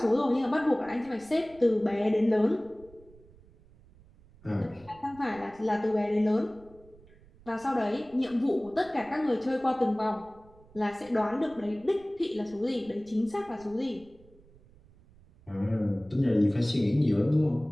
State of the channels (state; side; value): noise; right; rumble, 26 dB below the sound